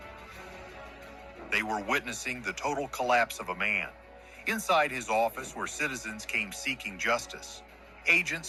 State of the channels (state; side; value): identical; both; correlation 1.00